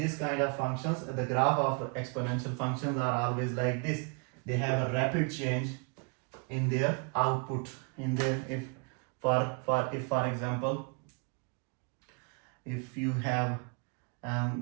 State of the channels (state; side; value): quieter; left; 35.2 dB